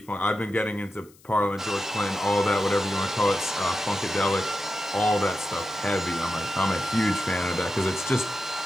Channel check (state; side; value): noise; left; hiss, 27 dB below the sound